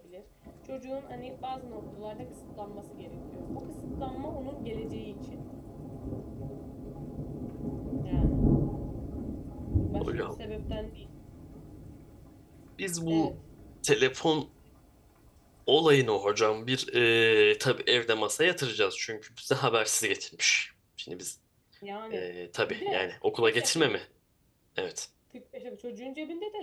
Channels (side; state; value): both; identical; correlation 1.00